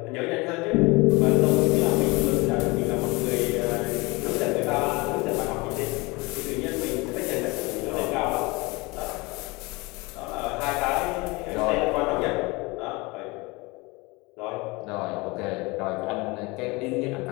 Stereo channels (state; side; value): quieter; right; 24.9 dB